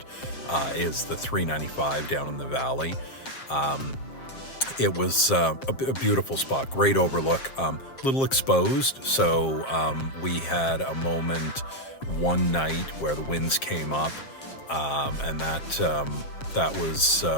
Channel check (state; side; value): late; right; 7.5 ms